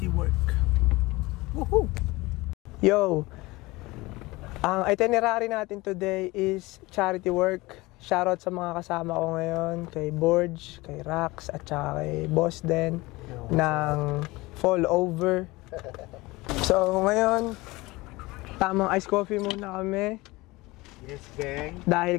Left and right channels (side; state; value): right; quieter; 21.5 dB